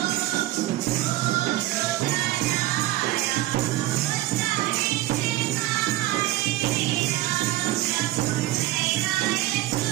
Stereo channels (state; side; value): quieter; left; 16.4 dB